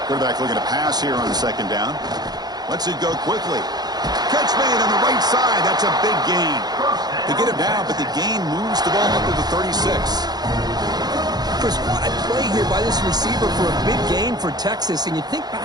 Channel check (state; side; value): late; left; 0.19 ms